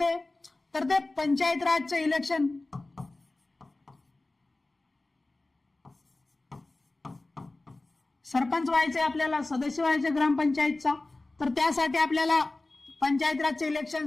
तर ते पंचायत राजचं इलेक्शन, सरपंच व्हायचे आपल्याला, सदस्य व्हायचे ग्रामपंचायतचा, तर त्यासाठी आपल्याला पंचायत राजच्या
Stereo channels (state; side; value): quieter; right; 3.0 dB